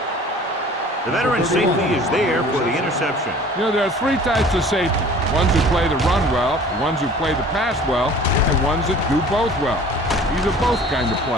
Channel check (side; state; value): both; normal; correlation 0.47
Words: The veteran safety is there for the interception. You know, there are three types of safety. Ones who play the run well, ones who play the pass well, and ones that do both well. He's a both kind of